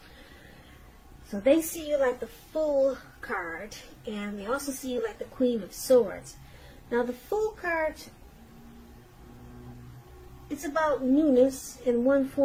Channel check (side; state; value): both; identical; correlation 1.00